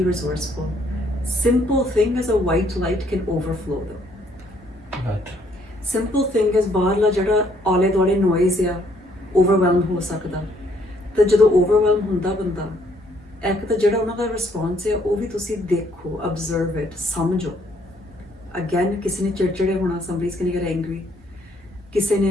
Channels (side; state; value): both; normal; correlation 0.67